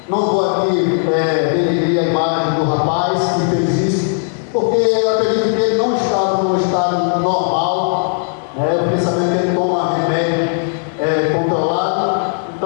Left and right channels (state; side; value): silent; right; digital silence